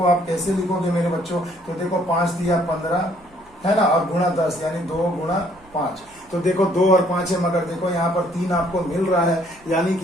आप कैसे लिखोगे मेरे बच्चों, तो देखो 5 दिया 15 है ना, और गुणा 10 यानी 2 गुणा 5। तो देखो 2 और 5 है, मगर देखो यहाँ पर 3 आपको मिल रहा है, यानी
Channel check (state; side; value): noise; right; hum, 29 dB below the sound